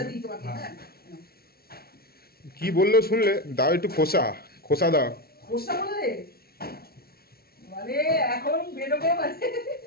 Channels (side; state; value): right; late; 0.44 ms